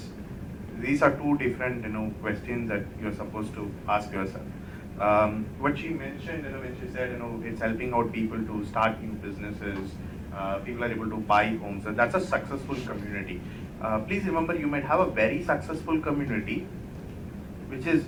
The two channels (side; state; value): both; identical; correlation 1.00